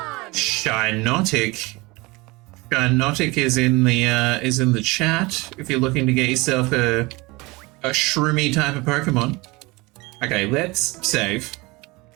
Shinotic. Shinotic is in the chat if you're looking to get yourself a shroomy type of Pokemon. Okay, let's save.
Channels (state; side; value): quieter; left; 23.8 dB